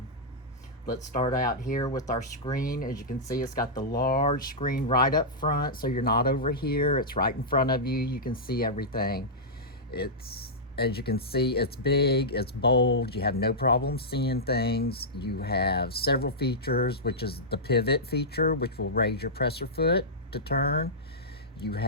Let's start out here with our screen. As you can see, it's got the large screen right up front, so you're not over here. It's right in front of you. You can see everything. As you can see, it's big, it's bold. You have no problem seeing things. You have several features, which is the pivot feature, which will raise your presser foot to turn. You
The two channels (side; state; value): both; normal; correlation -0.12